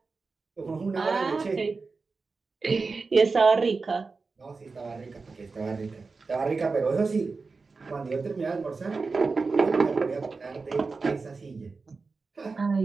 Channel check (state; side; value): quieter; left; 4.3 dB